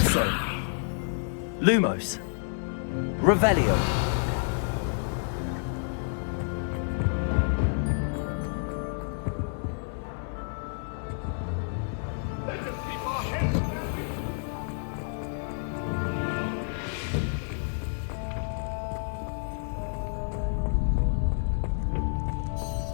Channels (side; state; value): right; silent; digital silence